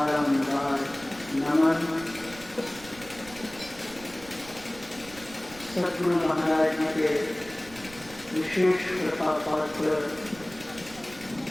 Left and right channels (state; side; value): noise; right; rumble, 20 dB below the sound